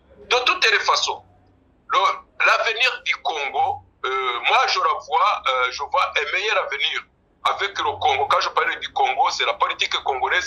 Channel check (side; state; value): both; identical; correlation 1.00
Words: De toutes les façons, l'avenir du Congo, moi je vois un meilleur avenir avec le Congo. Quand je parle du Congo, c'est la politique